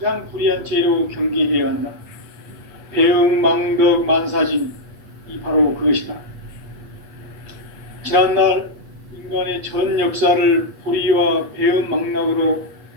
불의한 죄로 경계해야 한다. 배움 망덕 만사진이 바로 그것이다. 지난날 인간의 전 역사를 불의와 배움 망락으로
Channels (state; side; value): late; left; 8.4 ms